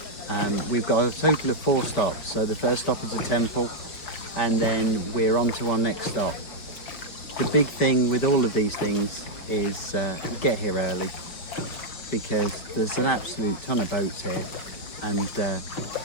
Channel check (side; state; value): right; late; 5.5 ms